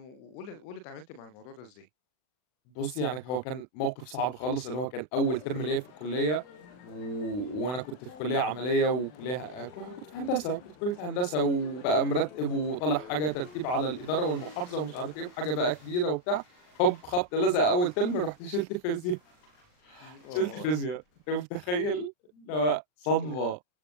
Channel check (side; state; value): right; late; 39 ms